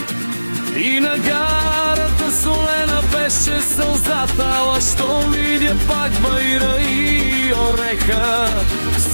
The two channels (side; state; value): both; inverted; correlation -1.00